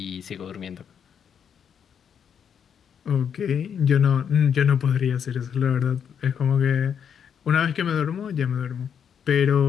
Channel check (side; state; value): right; quieter; 7.8 dB